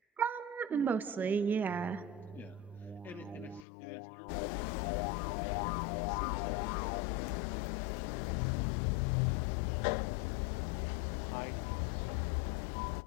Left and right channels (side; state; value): right; drops out; at 3.7 s